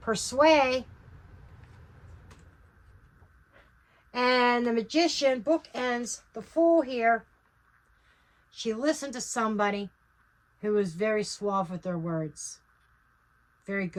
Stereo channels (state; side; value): identical; both; correlation 1.00